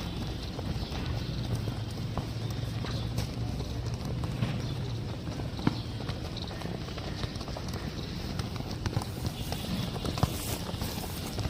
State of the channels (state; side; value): identical; both; correlation 1.00